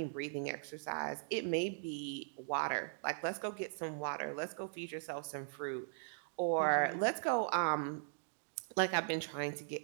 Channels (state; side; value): silent; left; digital silence